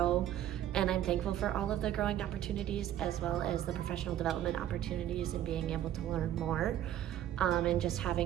And I'm thankful for all of the growing opportunities, as well as the professional development opportunities and being able to learn more. And just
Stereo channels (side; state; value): left; quieter; 11.8 dB